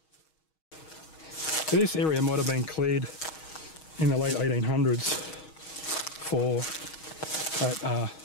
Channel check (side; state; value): right; late; 6.3 ms